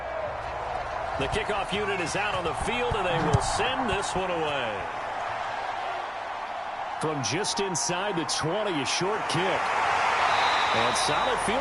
The kickoff unit is out on the field, and they will send this one away. From just inside the 20, a short kick. And solid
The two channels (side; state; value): both; identical; correlation 1.00